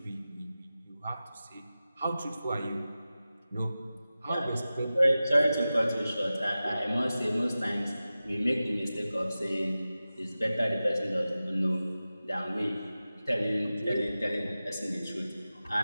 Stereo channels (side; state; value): both; inverted; correlation -0.95